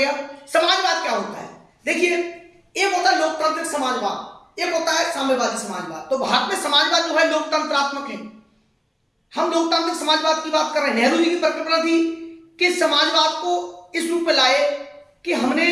समाजवाद क्या होता है, देखिए, एक होता है लोकतांत्रिक समाजवाद, एक होता है साम्यवादी समाजवाद। तो भारत में समाजवाद जो है लोकतंत्रात्मक है। हम लोकतांत्रिक समाजवाद की बात कर रहे हैं। नेहरू जी की परिकल्पना थी कि समाजवाद को इस रूप में लाए कि हमने,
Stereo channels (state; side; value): identical; both; correlation 1.00